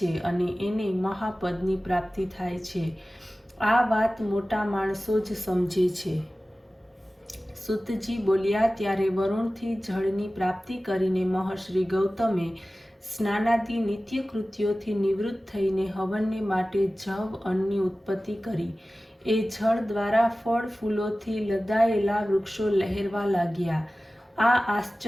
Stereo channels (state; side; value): normal; both; correlation 0.96